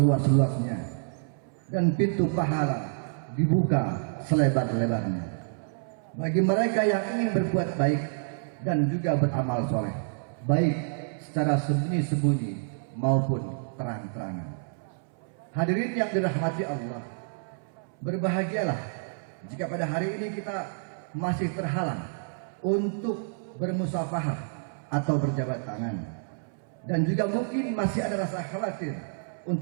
dan pintu pahala dibuka selebar-lebarnya bagi mereka yang ingin berbuat baik dan juga beramal soleh, baik secara sembunyi-sembunyi maupun terang-terangan. Hadirin yang dirahmati Allah, berbahagialah jika pada hari ini kita masih terhalang untuk bermusafahah atau berjabat tangan, dan juga mungkin masih ada rasa khawatir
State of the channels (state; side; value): silent; left; 59 dB below the other